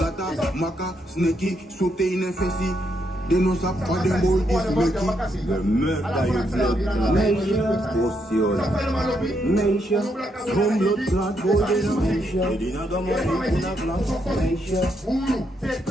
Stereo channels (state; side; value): normal; both; correlation 0.78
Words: maka, sneki, sote in a fesi. They know some for them boy is making. The murder you blood clot. Meisha, some blood clot boy they know Meisha. They didn't go more in a glass. Meisha,